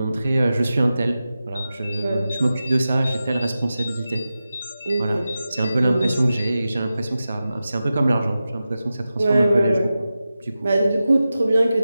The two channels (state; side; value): inverted; both; correlation -0.93